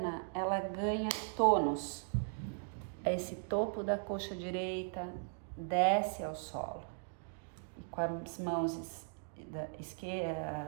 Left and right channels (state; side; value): silent; left; digital silence